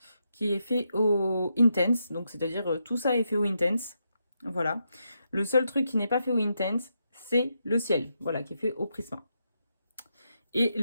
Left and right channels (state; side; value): inverted; both; correlation -0.83